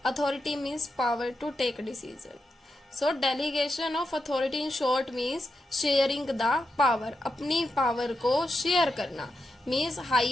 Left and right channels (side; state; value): both; normal; correlation 0.87